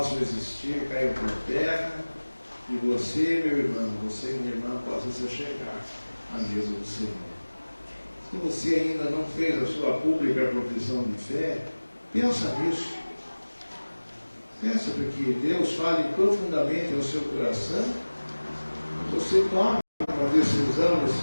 existir, caiam por terra, e você, meu irmão, você, minha irmã, possa se chegar à mesa do Senhor. Se você ainda não fez a sua pública profissão de fé, pensa nisso. Pensa para que Deus fale profundamente ao seu coração. Você toma uma decisão nesse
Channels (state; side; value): inverted; both; correlation -1.00